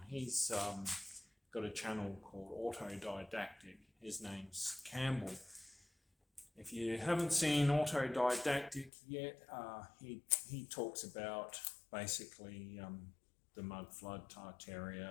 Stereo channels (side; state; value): right; drops out; at 8.9 s